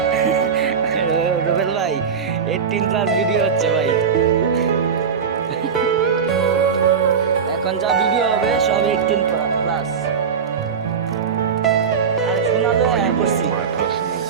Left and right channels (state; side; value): quieter; left; 6.4 dB